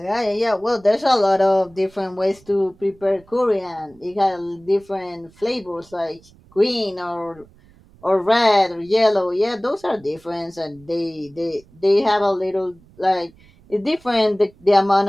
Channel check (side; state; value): right; noise; rumble, 28 dB below the sound